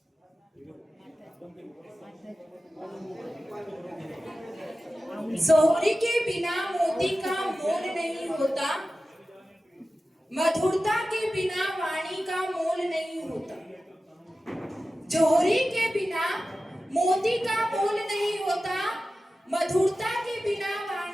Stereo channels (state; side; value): normal; both; correlation 0.94